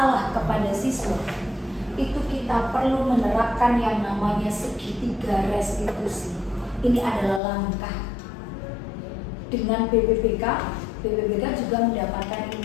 kepada siswa, itu kita perlu menerapkan yang namanya segitiga restitusi. Ini adalah langkah. Dengan BPPK juga mendapatkan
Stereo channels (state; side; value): drops out; right; at 7.4 s